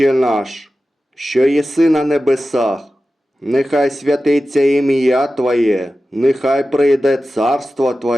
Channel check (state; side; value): normal; both; correlation 0.94